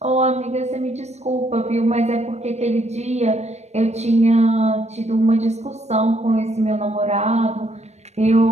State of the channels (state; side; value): late; left; 0.32 ms